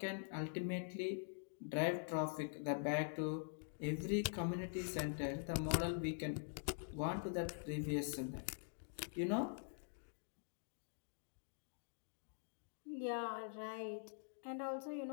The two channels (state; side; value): silent; right; digital silence